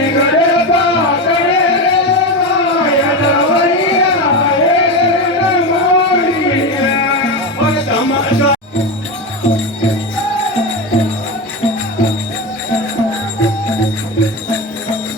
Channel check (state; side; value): normal; both; correlation 0.18